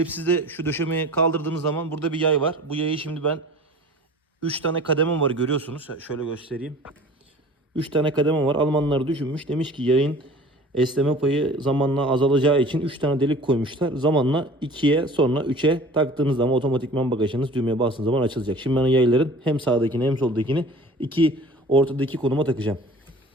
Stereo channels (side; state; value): both; normal; correlation 0.44